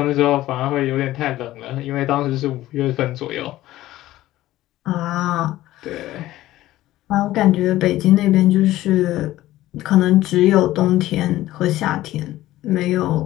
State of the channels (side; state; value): right; quieter; 15.5 dB